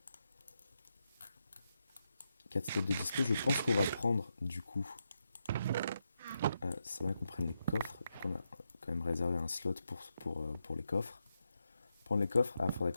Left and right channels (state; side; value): inverted; both; correlation -0.84